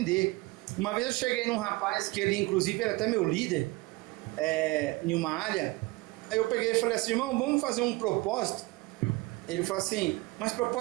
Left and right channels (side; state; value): left; quieter; 22.4 dB